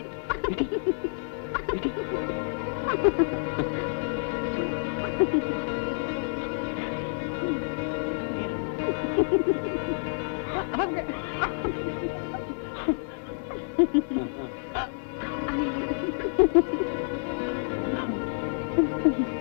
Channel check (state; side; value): silent; right; digital silence